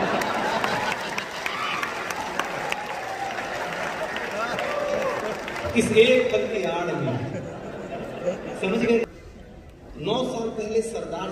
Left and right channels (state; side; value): identical; both; correlation 1.00